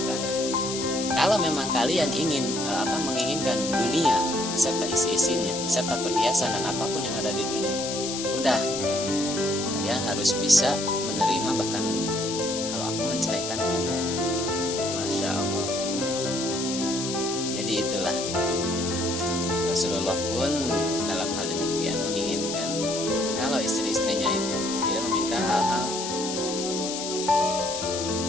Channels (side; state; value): left; noise; hiss, 5 dB below the sound